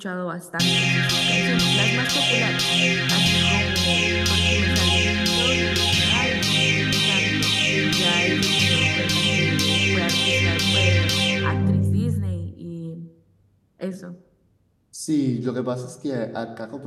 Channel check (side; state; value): both; identical; correlation 1.00